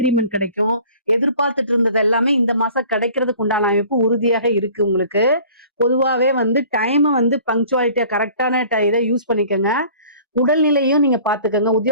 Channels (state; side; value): inverted; both; correlation -0.49